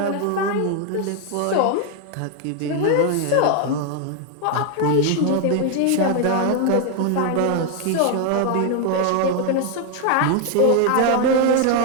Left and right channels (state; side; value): different; both; correlation 0.01